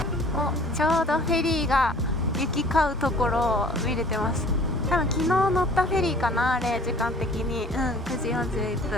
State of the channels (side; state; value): both; normal; correlation 0.50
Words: ちょうどフェリーが行き交うところを見れてます。多分昨日乗ったフェリーかな、あれ時間的に。9時41